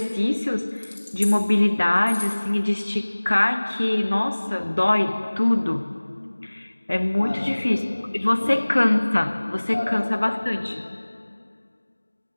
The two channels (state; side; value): inverted; both; correlation -1.00